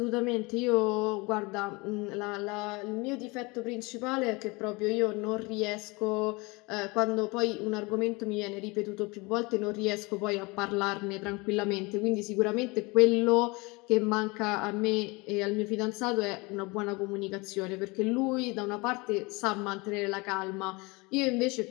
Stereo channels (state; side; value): quieter; right; 25.9 dB